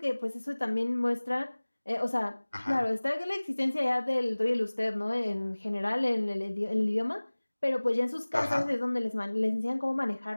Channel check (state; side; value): inverted; both; correlation -1.00